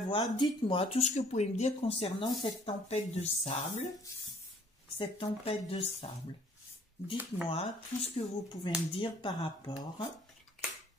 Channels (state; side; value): normal; both; correlation 0.59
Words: Dites-moi tout ce que vous pouvez me dire concernant cette tempête de sable. Cette tempête de sable. Dites-moi tout ce que vous pouvez me dire par rapport